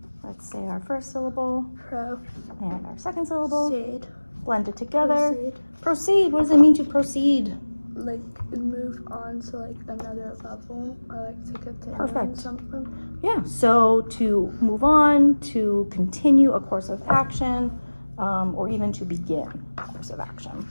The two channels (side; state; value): both; inverted; correlation -1.00